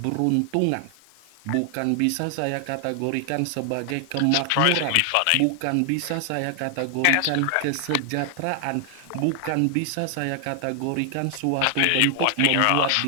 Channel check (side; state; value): both; different; correlation 0.00